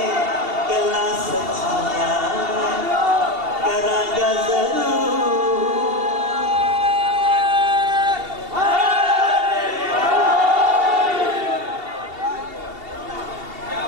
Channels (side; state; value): left; late; 2.7 ms